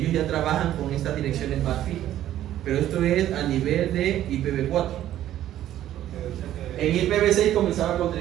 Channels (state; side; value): quieter; left; 12.5 dB